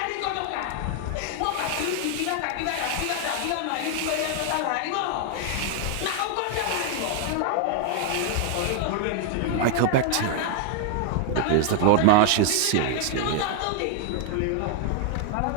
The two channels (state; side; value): different; both; correlation 0.00